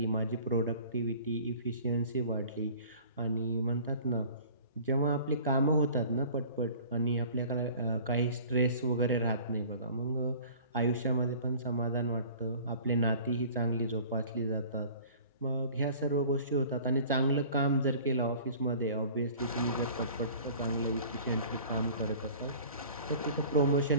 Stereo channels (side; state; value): both; inverted; correlation -0.46